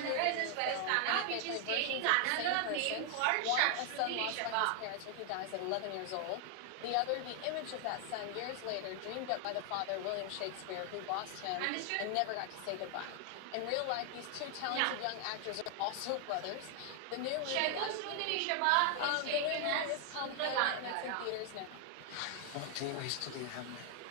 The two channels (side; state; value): both; different; correlation 0.00